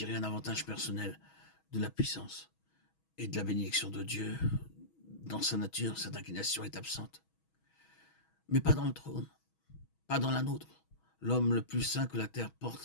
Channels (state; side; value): late; right; 6.2 ms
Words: un avantage personnel de la puissance et de la bénédiction de Dieu. Dans sa nature, cette inclination est absente. Mais pas dans le trône, pas dans la nôtre. L'homme le plus saint que la terre